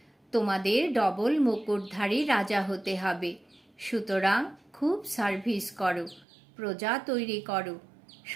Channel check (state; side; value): drops out; left; at 6.2 s